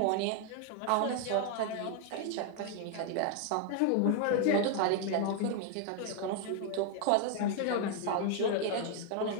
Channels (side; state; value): both; different; correlation 0.00